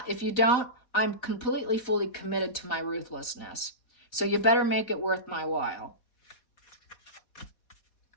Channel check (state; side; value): late; right; 4.0 ms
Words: If you don't, I'm completely, fully committed to my ruthlessness. So you better make it worth my while.